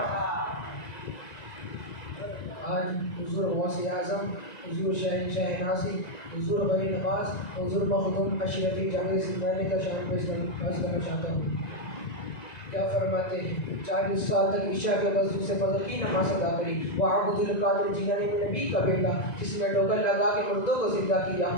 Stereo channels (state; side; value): late; right; 1.9 ms